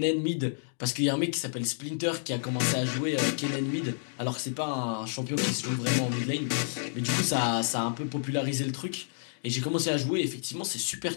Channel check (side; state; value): right; silent; digital silence